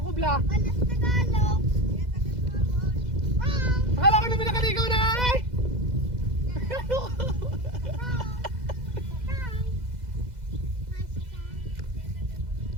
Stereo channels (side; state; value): left; late; 2.0 ms